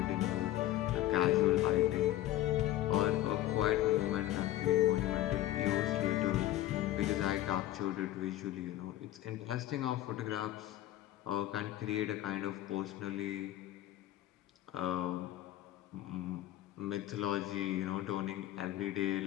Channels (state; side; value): quieter; right; 14.1 dB